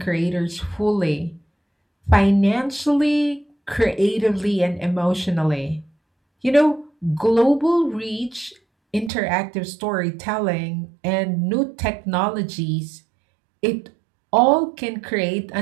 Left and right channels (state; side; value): drops out; left; at 9.1 s